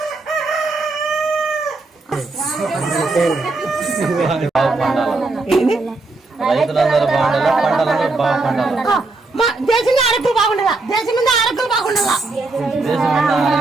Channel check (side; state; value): left; quieter; 3.4 dB